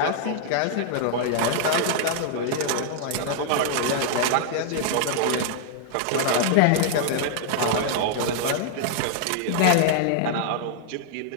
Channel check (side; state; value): both; different; correlation -0.01